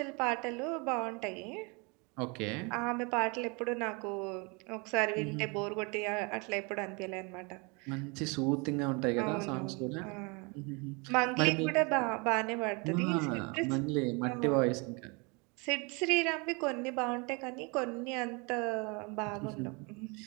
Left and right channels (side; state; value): left; quieter; 30.3 dB